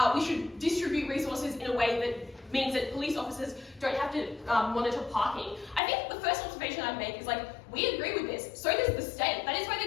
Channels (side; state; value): right; drops out; at 5.8 s